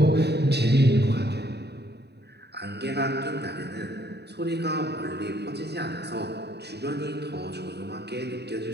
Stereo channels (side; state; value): left; late; 0.48 ms